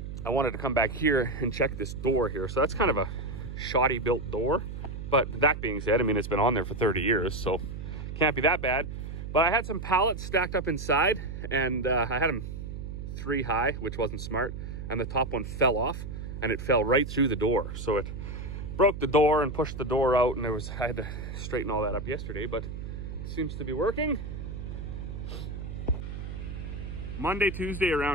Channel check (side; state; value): right; noise; hum, 7 dB below the sound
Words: I wanted to come back here and check this door here. So that's kind of a shoddy built door, but that being said, I mean, it's been on there for 30 years, so can't be that bad. But I had some pallets stacked up inside, and I had them 3 high, which wasn't smart. And the top one fell off, and it fell right through the door. So it broke the door and pushed the door out, and I had to straighten all that up yesterday, but it seems to be working. Monday, Tuesday